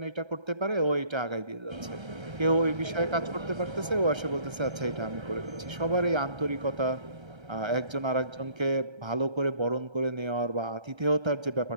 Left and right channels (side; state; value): left; late; 1.3 ms